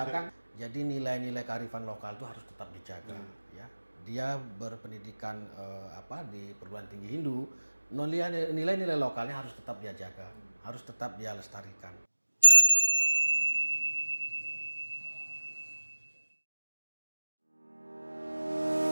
Jadi nilai-nilai kearifan lokal itu harus tetap dijaga, ya. Dia berpendidikan di perguruan tinggi Hindu, nilai-nilai lokalnya harus tetap dia jaga, harus tetap dia lestarikan.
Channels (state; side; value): inverted; both; correlation -1.00